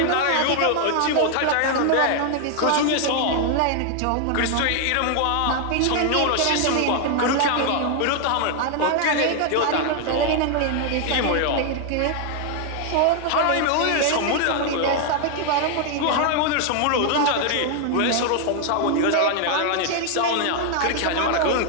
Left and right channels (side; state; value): both; different; correlation 0.00